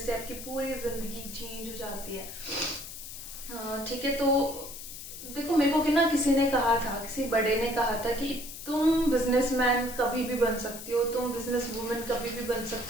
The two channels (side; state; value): left; noise; hiss, 11 dB below the sound